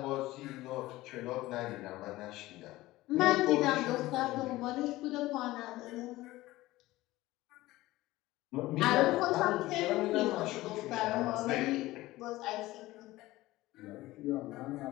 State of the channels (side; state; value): right; quieter; 17.9 dB